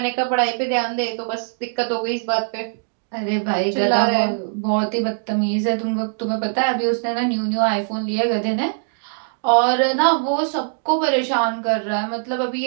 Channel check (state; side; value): silent; left; digital silence